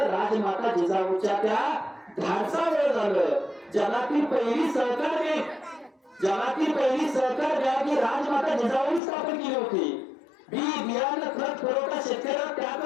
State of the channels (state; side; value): drops out; right; at 9.0 s